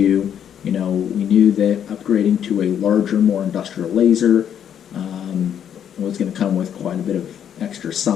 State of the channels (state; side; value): quieter; right; 9.1 dB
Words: We knew that upgrading to a larger, more industrial laser was going to come with quite a bit of extra